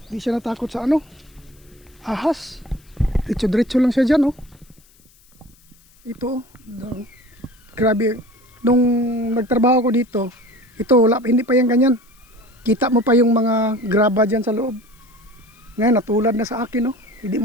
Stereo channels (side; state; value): left; noise; hiss, 30 dB below the sound